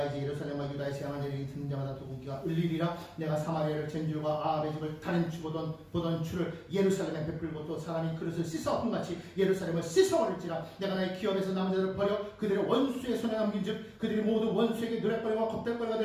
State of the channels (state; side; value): identical; both; correlation 1.00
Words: 이제 예루살렘과 유다의 재앙을 내리니 듣는 자마다 또 고기가 울리리라. 내가 사마리아를 젠줄과 아합의 집을 다른 추 보던 추를 예루살렘에 베풀고 또 사람이 그릇을 씻어 험같이 예루살렘을 씻어버릴지라. 내가 나의 기업에서 남은 자들을 버려 그들의 원수의 손에 넘긴즉 그들이 모두 원수에게 노랫거리와 겁탈거리가